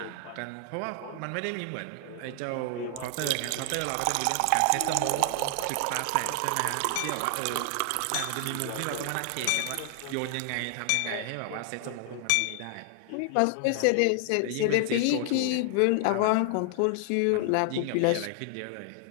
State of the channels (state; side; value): different; both; correlation 0.00